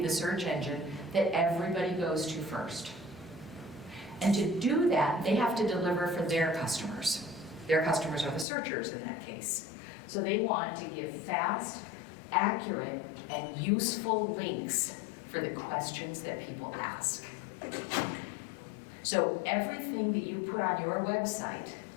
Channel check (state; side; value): drops out; right; at 8.5 s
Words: the search engine that everybody goes to first. And to do that, they have to deliver for their customers. Their customers are the searchers in that case. So they want to give fast, accurate, and useful links for the questions that people ask. So everything that you put on your website,